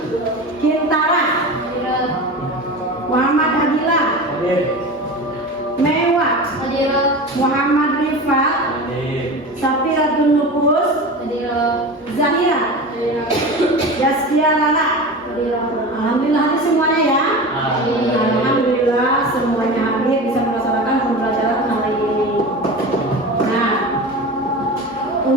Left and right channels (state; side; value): normal; both; correlation 0.30